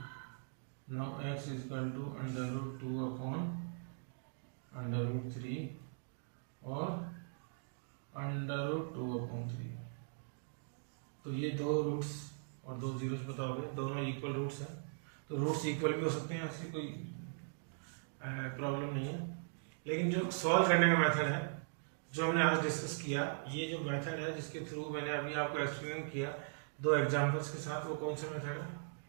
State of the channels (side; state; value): left; silent; digital silence